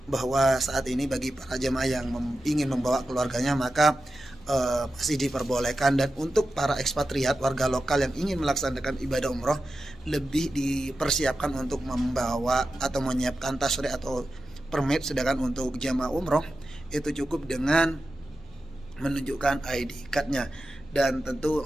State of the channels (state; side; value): normal; both; correlation 0.92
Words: bahwa saat ini bagi para jemaah yang ingin membawa keluarganya maka masih diperbolehkan, dan untuk para ekspatriat warga lokal yang ingin melaksanakan ibadah umroh lebih dipersiapkan untuk membawa atau menyiapkan tasyri' atau permit. Sedangkan untuk jamaah umroh itu cukup dengan menunjukkan ID cardnya. Dan tentu